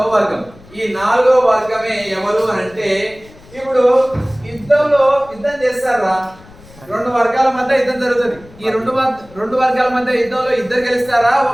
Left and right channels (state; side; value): noise; left; rumble, 23 dB below the sound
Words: వర్గం. ఈ 4వ వర్గమే ఎవరు అంటే, ఇప్పుడు యుద్ధం చేస్తారా? రెండు వర్గాల మధ్య యుద్ధం జరుగుతుంది. ఈ రెండు వర్గాల మధ్య యుద్ధంలో ఇద్దరు గెలుస్తారా?